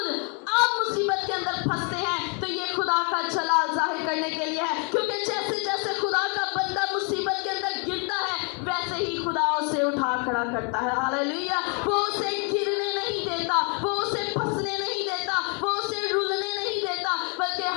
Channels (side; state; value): right; quieter; 36.2 dB